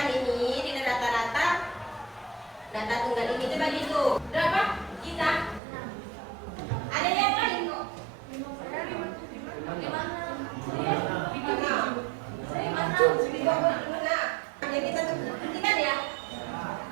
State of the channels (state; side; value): drops out; left; at 5.6 s